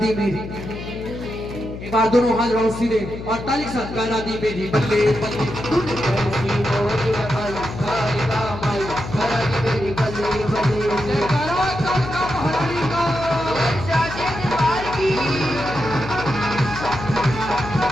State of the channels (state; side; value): noise; left; hum, 10 dB below the sound